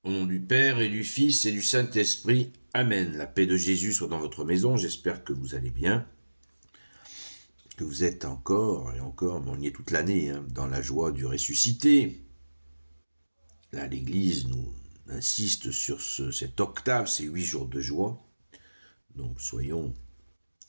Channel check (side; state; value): both; inverted; correlation -1.00